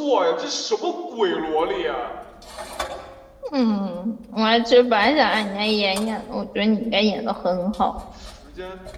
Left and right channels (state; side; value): identical; both; correlation 1.00